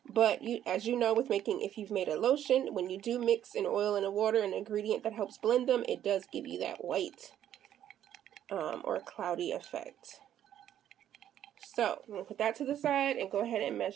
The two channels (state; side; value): quieter; left; 10.9 dB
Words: But you, as you know, with making, if you've made a lotion, when you do mix an oil and a water, an ingredient that helps blend them, it does give you that white or cloudy effect. So I'm going to put that to the side and go ahead and